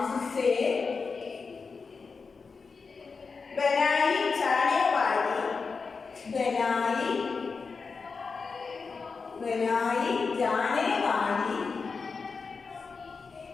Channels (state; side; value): quieter; right; 4.8 dB